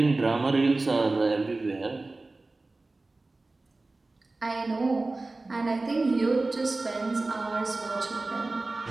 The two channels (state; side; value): quieter; left; 3.2 dB